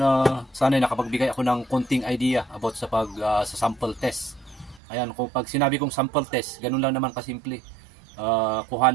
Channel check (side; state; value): left; drops out; at 4.8 s